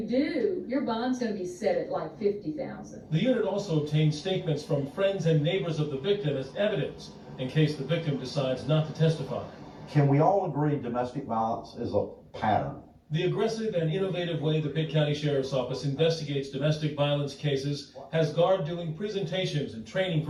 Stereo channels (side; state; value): both; identical; correlation 1.00